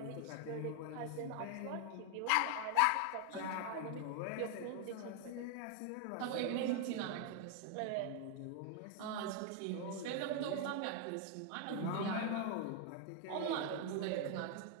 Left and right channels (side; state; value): both; different; correlation 0.01